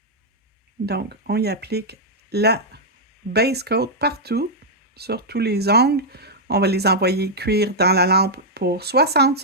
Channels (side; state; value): both; normal; correlation -0.05